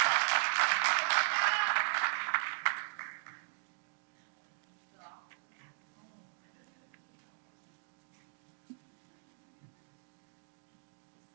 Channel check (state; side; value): silent; left; digital silence